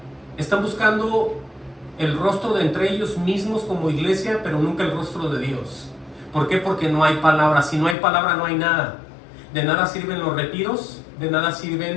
Están buscando el rostro de entre ellos mismos como iglesia, pero nunca el rostro de Dios. ¿Por qué? Porque no hay palabra. Si no hay palabra, no hay nada. De nada sirven los retiros, de nada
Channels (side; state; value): right; drops out; at 8.0 s